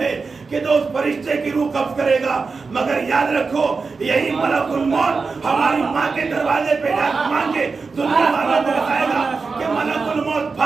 کہ جو اس فرشتے کی روح قبض کرے گا، مگر یاد رکھو یہی ملک الموت ہماری ماں کے دروازے پہ جا مانگ کے دنیا والوں کو بتائے گا کہ ملک الموت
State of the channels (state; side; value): quieter; left; 4.5 dB